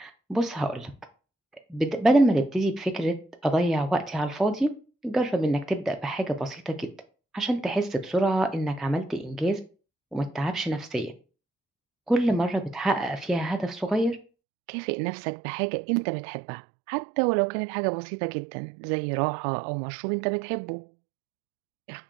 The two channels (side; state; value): left; drops out; at 14.2 s